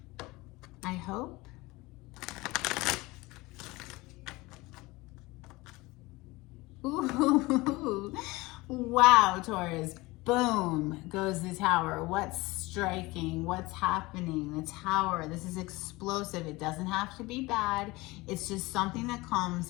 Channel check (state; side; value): quieter; right; 21.7 dB